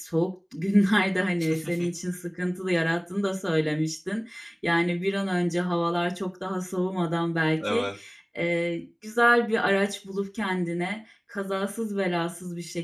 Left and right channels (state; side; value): identical; both; correlation 1.00